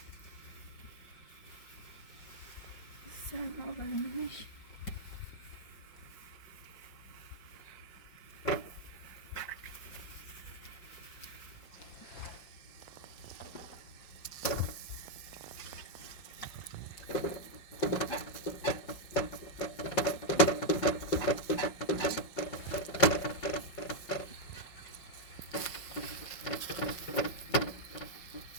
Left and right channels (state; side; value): late; right; 5.6 ms